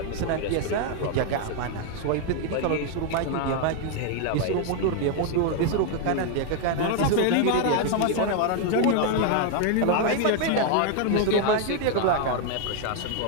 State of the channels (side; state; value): both; different; correlation 0.01